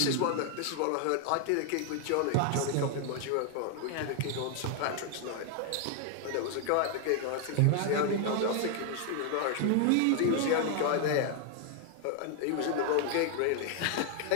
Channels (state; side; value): different; both; correlation 0.00